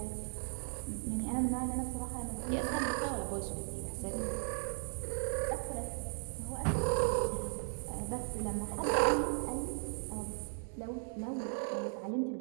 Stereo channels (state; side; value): silent; left; 53 dB below the other